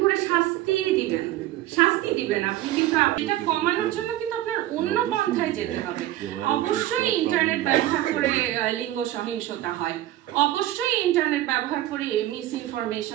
করে শাস্তি দিবেন আপনি, কিন্তু এটা কমানোর জন্য কিন্তু আপনার অন্য পন্থায় যেতে হবে। অবশ্যই ইন্টারনেট ব্যবহার করে লিঙ্গ সহিংসতা হয়, অবশ্যই ইন্টারনেট ব্যবহার করে মিস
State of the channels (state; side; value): quieter; left; 14.4 dB